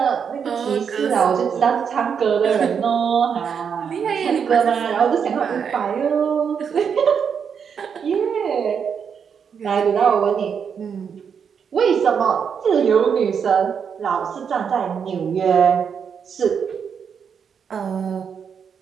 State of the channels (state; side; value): quieter; left; 7.0 dB